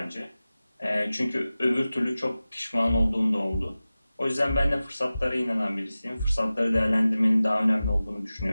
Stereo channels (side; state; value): both; inverted; correlation -0.96